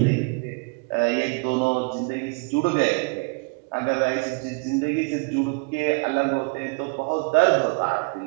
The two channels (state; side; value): quieter; left; 32.8 dB